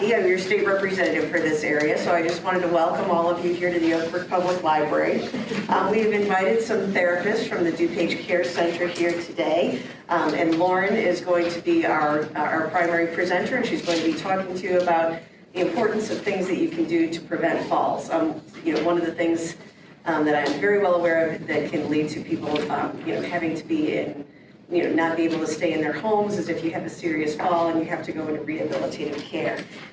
I'm your state representative for this area, so I just wanted to welcome all of you here to the Oak Brook Public Library. We've invited some therapists from the DuPage Care Center here today, and Lauren is going to be our primary presenter, and she's going to be talking to you about the importance of things that you can do to prevent falls. One of the things that I'm very well aware of that can lead to people, having to be in, not be able to stay in their homes is if you have a serious fall and you have to go into rehabilitative care.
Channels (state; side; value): identical; both; correlation 1.00